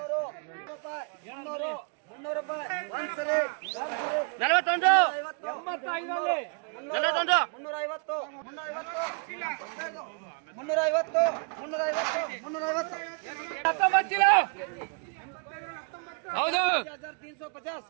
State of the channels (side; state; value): left; quieter; 39.9 dB